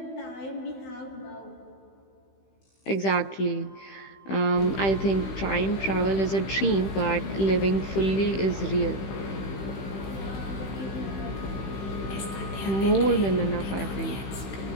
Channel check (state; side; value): late; right; 15 ms